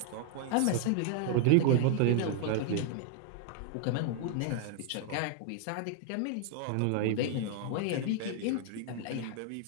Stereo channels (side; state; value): both; different; correlation 0.00